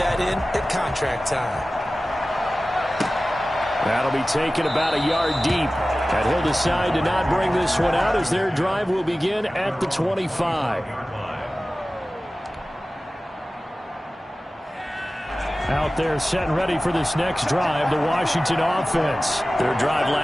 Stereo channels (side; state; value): both; normal; correlation 0.96